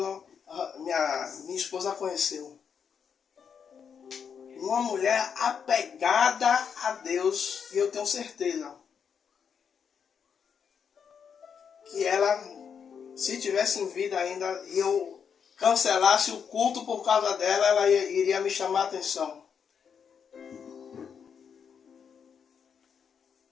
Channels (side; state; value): right; quieter; 7.0 dB